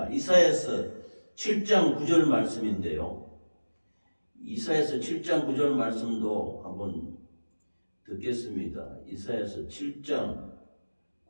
이사야서 7장 9절 말씀인데요. 이사야서 7장 9절 말씀도 한번 듣겠습니다. 이사야서 7장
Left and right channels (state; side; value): inverted; both; correlation -1.00